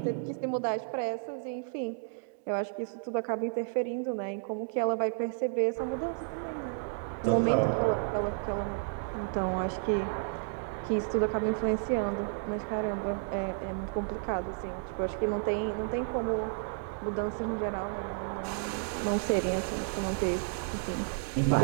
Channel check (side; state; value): left; silent; digital silence